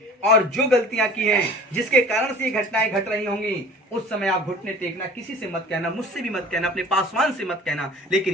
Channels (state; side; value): normal; both; correlation 0.44